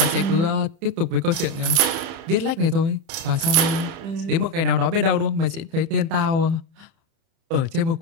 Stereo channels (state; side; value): late; left; 30 ms